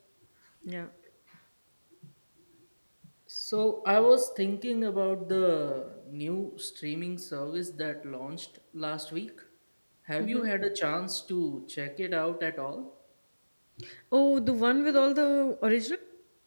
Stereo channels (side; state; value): both; inverted; correlation -1.00